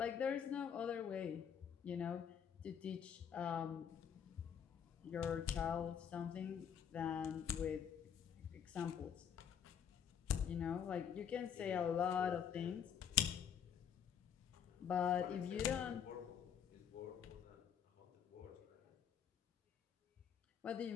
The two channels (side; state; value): right; quieter; 8.3 dB